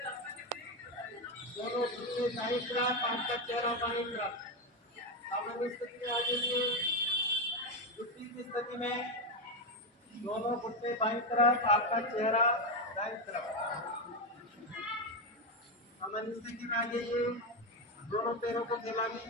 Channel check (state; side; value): normal; both; correlation 0.10